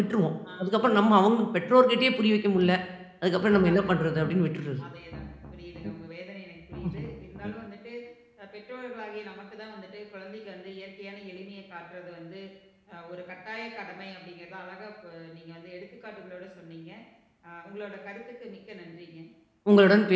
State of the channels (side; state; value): both; identical; correlation 1.00